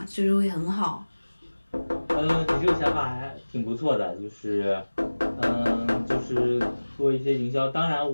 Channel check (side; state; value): both; inverted; correlation -1.00